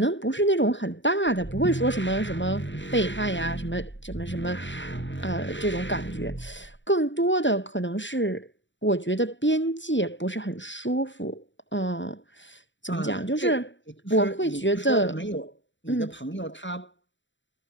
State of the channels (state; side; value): late; right; 0.54 ms